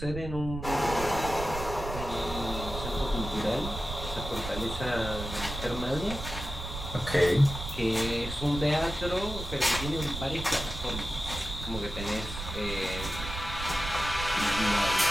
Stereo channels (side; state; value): right; noise; rumble, 8 dB below the sound